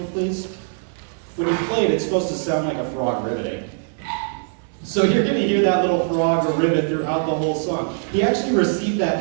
please? When you play it, it's supposed to sound like a frog ribbiting. So you're going to hear that little frog or ribbit throughout the whole song. He actually received that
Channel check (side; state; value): left; silent; digital silence